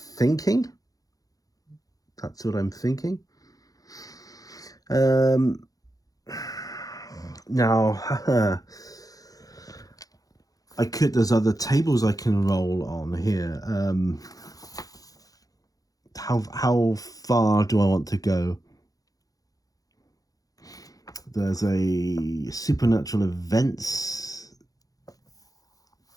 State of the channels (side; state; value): right; late; 0.17 ms